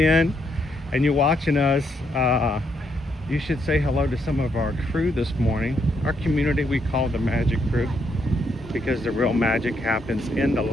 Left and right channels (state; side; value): normal; both; correlation 0.75